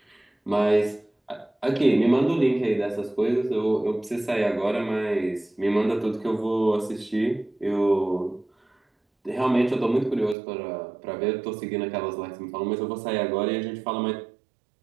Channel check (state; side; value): drops out; left; at 10.4 s